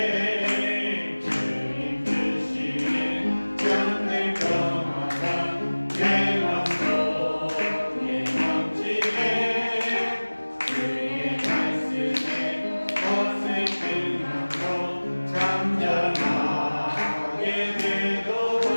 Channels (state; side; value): inverted; both; correlation -1.00